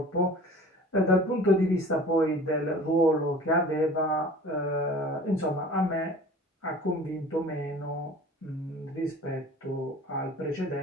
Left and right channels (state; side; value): normal; both; correlation 0.43